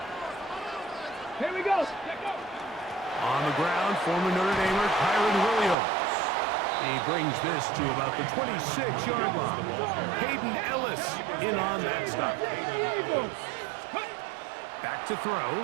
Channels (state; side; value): drops out; left; at 5.8 s